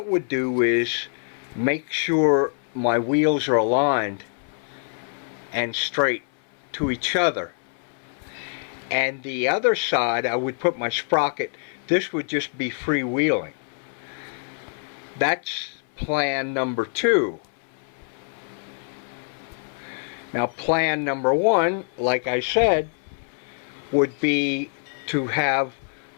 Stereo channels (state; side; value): silent; right; 62 dB below the other